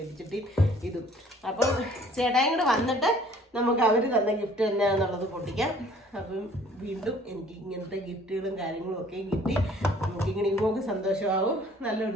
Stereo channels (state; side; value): normal; both; correlation 0.55